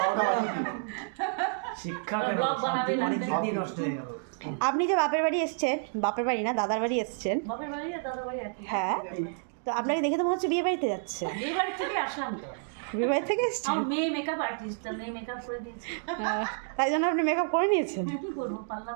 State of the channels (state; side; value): silent; left; digital silence